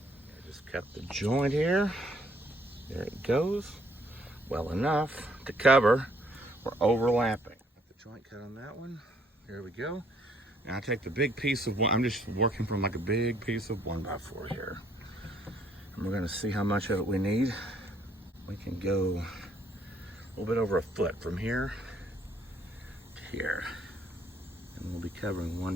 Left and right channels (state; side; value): normal; both; correlation 0.66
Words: I just cut the joint here. There it goes. Well enough to cover. We're overlapping. Got the joint cut on that one. There we go. Now I take the big piece of one. I'm just working from like a big piece of 1x4 here. And we're gonna see how much of it we need. We can go a little bit over a foot from here to here. And we'll be covering